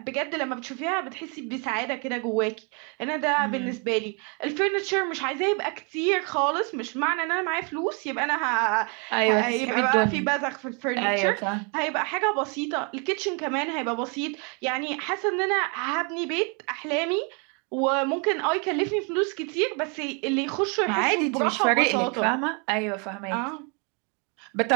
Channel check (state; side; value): quieter; left; 35.4 dB